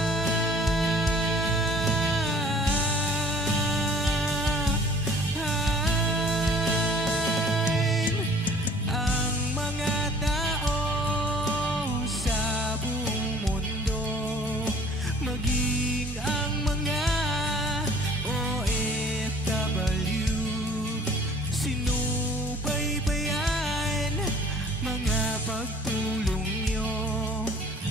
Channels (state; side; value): normal; both; correlation 0.52